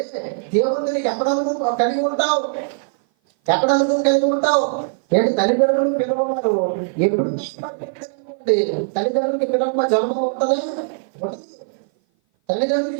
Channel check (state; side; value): silent; left; 57 dB below the other